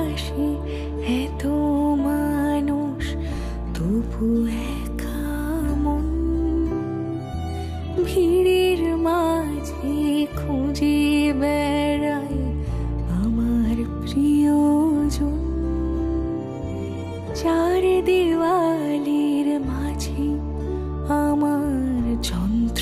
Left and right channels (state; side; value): identical; both; correlation 1.00